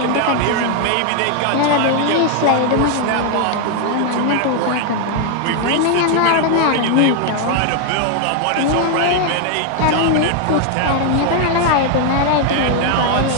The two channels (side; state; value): both; different; correlation 0.00